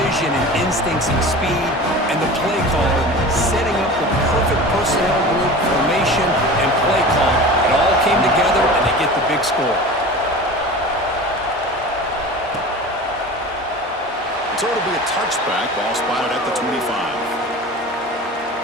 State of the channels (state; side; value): normal; both; correlation 0.35